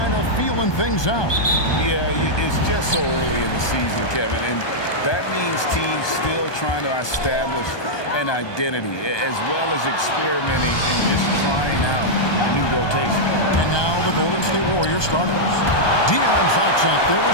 of feeling things out. Yeah, it's just so early in the season, Kevin, and that means teams still trying to establish an identity as well as experimenting and just trying out new rotation. And now the Golden State Warriors starters. De'Aaron Fox out there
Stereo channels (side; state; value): right; late; 1.2 ms